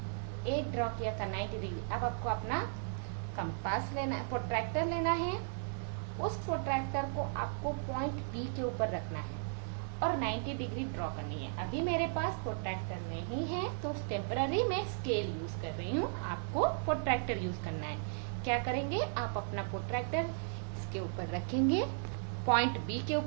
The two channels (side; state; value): left; silent; digital silence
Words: एक ड्रॉ किया था 90 डिग्री, अब आपको अपना कंपास लेना है, प्रोट्रैक्टर लेना है। उस प्रोट्रैक्टर को आपको पॉइंट बी के ऊपर रखना है और 90 डिग्री ड्रॉ करनी है। अभी मेरे पास प्रोट्रैक्टर नहीं है तो टेम्पररी मैं स्केल यूज कर रही हूँ। आपको प्रोट्रैक्टर यूज करना है। क्या करेंगे? आप अपना प्रोट्रैक्टर इसके ऊपर रखेंगे, पॉइंट बी के